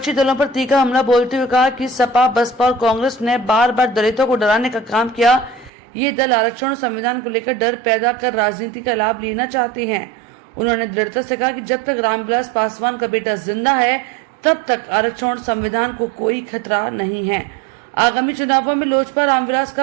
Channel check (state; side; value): drops out; left; at 5.7 s